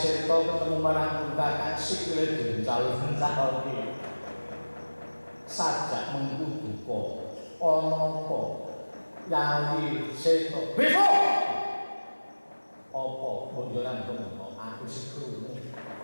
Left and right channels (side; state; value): both; inverted; correlation -1.00